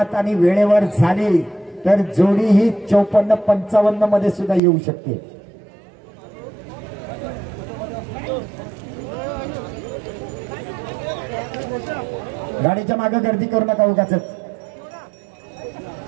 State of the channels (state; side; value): drops out; left; at 4.6 s